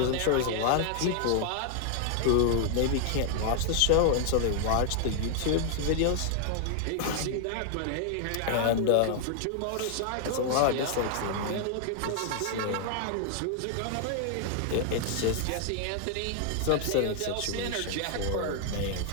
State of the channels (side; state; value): both; different; correlation 0.00